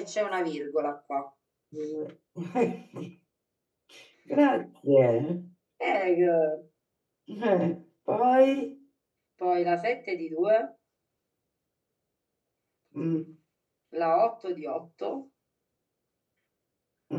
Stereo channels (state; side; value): identical; both; correlation 1.00